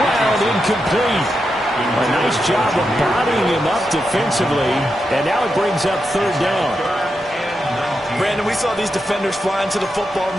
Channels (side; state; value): both; normal; correlation 0.86